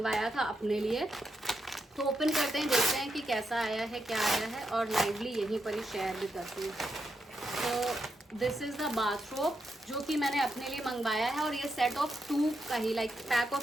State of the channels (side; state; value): both; normal; correlation 0.83